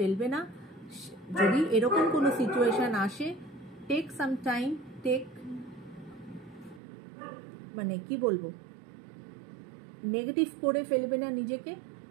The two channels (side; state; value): left; drops out; at 6.8 s